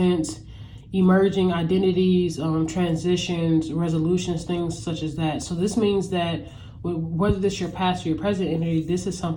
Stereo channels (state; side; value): identical; both; correlation 1.00